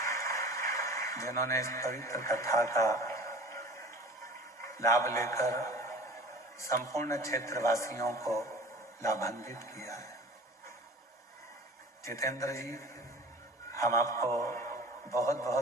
जिन्होंने इस पवित्र कथा का लाभ लेकर संपूर्ण क्षेत्रवासियों को लाभान्वित किया है। जितेंद्र जी, हम आपको बहुत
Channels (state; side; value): normal; both; correlation 0.41